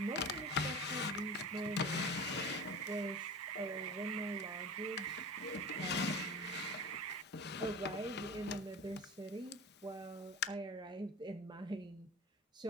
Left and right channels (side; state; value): both; normal; correlation 0.34